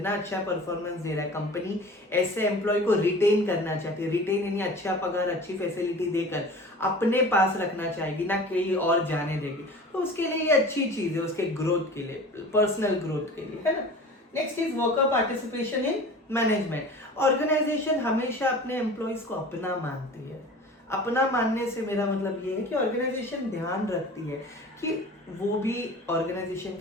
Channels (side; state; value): both; normal; correlation 0.40